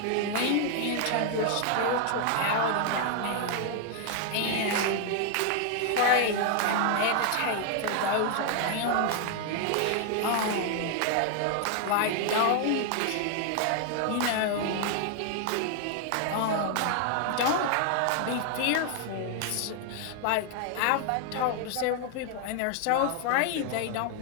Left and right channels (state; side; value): different; both; correlation 0.00